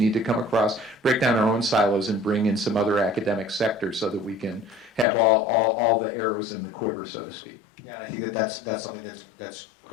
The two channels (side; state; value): right; drops out; at 5.1 s